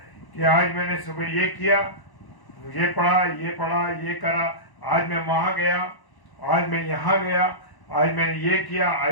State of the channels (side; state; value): right; late; 1.1 ms